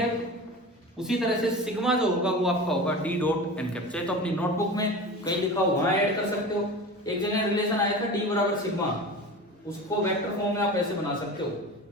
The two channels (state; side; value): normal; both; correlation 0.33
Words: उसी तरह से सिग्मा जो होगा वो आपका होगा डी डॉट एन कैप। चाहे तो अपनी नोटबुक में कहीं लिखा हो वहां ऐड कर सकते हो। एक जगह रिलेशन आया था डी बराबर सिग्मा, उसको वेक्टर फॉर्म में आप ऐसे बना सकते हो,